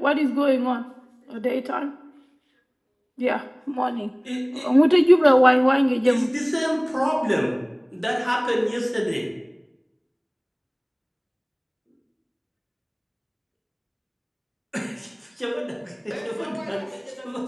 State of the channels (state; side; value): identical; both; correlation 1.00